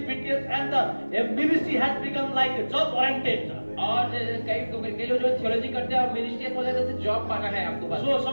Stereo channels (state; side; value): inverted; both; correlation -1.00